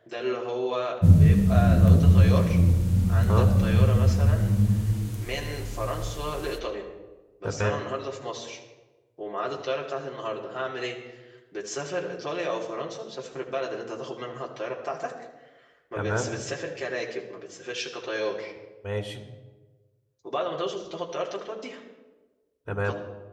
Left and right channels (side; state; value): both; identical; correlation 1.00